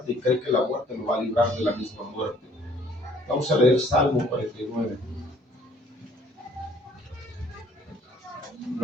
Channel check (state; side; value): normal; both; correlation 0.59